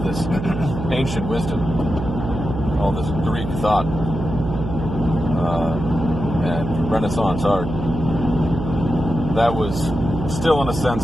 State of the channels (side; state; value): right; noise; hum, 6 dB below the sound